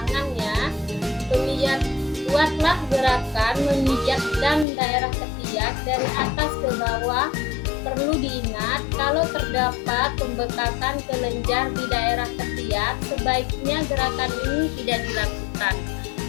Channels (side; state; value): right; drops out; at 4.7 s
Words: ya. Buatlah gerakan memijatkan daerah ketiak dari atas ke bawah. Perlu diingat, kalau terdapat pembekakan kelenjar di daerah ketiak, sebaiknya gerakan ini tidak dilakukan.